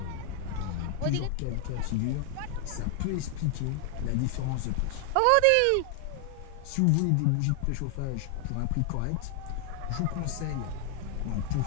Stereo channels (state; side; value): different; both; correlation 0.00